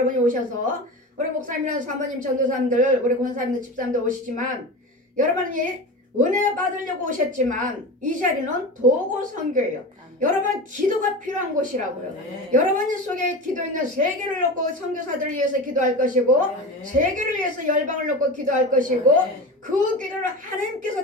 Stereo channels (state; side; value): normal; both; correlation 0.28